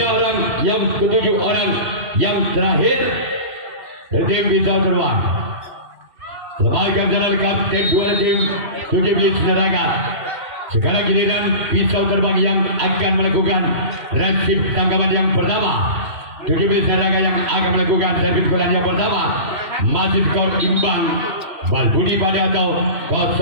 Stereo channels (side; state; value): left; late; 2.6 ms